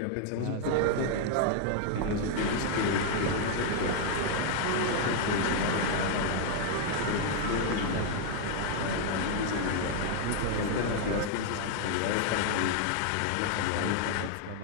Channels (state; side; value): different; both; correlation 0.00